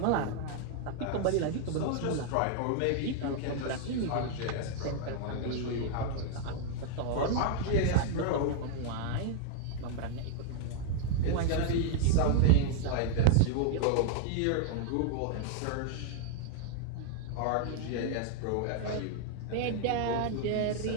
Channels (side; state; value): both; different; correlation 0.00